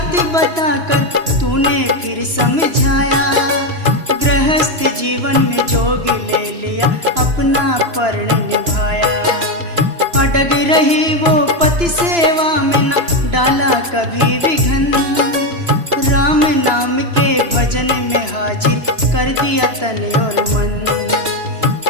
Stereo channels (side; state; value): left; late; 2.9 ms